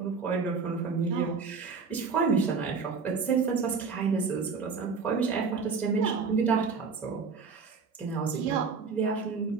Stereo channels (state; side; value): quieter; left; 5.1 dB